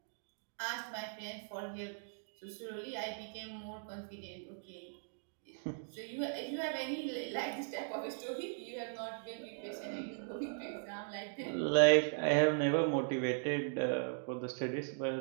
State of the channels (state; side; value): silent; left; digital silence